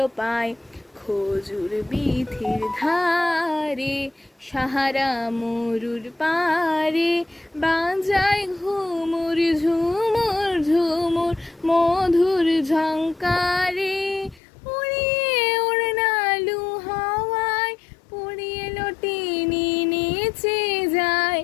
পায়। খজুর বিথির ধারে সাহারা মরুর পারে, বাজায় ঘুমুর ঝুমুর ঝুমুর মধুর ঝঙ্কারে। উড়িয়ে ওড়নালু হাওয়ায় পুড়িয়ে লটিনি নেচে যায়,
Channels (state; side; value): drops out; right; at 14.4 s